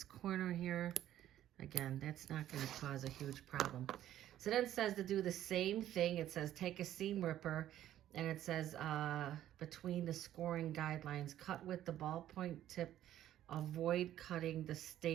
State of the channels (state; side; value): quieter; left; 12.3 dB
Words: corner here. Again, that's not going to cause a huge problem. So then it says to do the same thing. It says take a seam ripper, and it says between the scoring guidelines, cut with the ballpoint tip, avoid cutting the